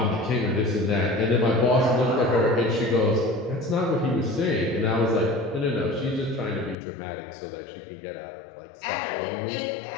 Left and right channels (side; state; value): right; drops out; at 6.8 s